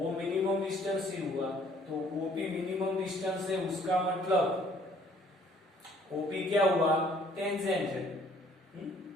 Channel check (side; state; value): both; normal; correlation 0.59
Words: मिनिमम डिस्टेंस ही हुआ। तो ओपी मिनिमम डिस्टेंस है, उसका मतलब ओपी क्या हुआ, टेंजेंट है।